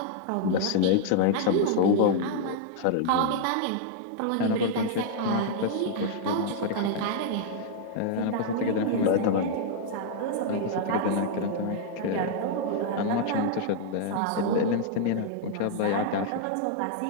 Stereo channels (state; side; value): different; both; correlation -0.01